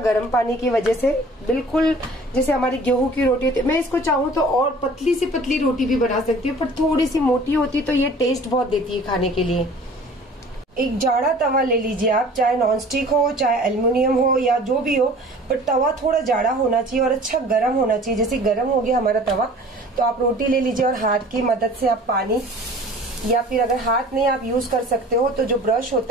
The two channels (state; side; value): normal; both; correlation 0.47